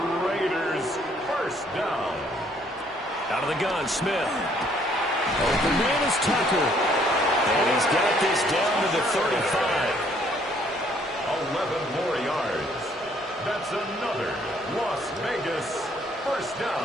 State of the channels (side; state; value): both; normal; correlation 0.64